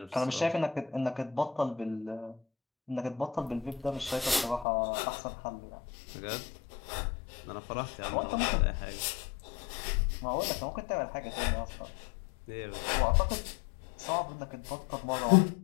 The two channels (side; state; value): right; drops out; at 4.7 s